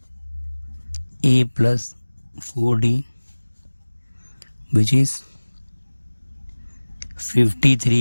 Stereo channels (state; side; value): inverted; both; correlation -1.00